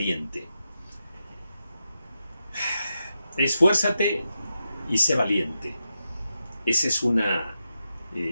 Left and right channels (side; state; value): both; inverted; correlation -0.88